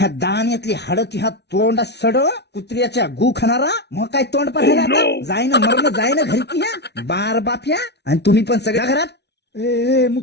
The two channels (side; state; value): right; late; 0.49 ms